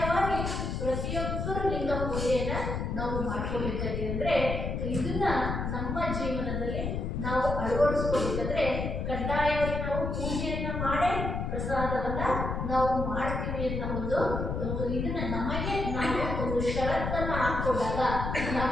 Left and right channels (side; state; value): left; noise; rumble, 2 dB below the sound